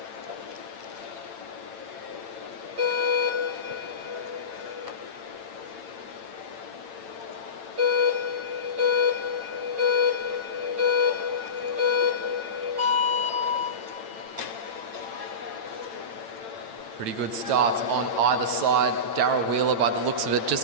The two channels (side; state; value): left; late; 8.9 ms